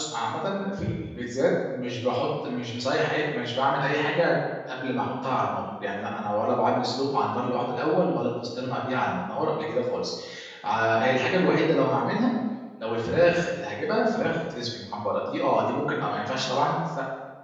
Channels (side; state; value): both; identical; correlation 1.00